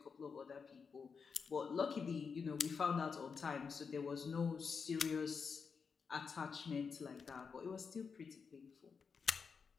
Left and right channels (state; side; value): quieter; right; 5.7 dB